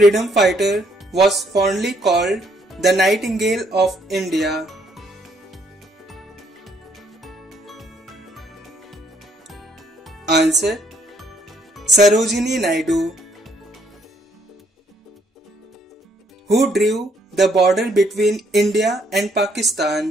fighter was fondly called the Nightingale of India? Answer. Sarojini Naidu. Who drew the border between India and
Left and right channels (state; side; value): normal; both; correlation 0.69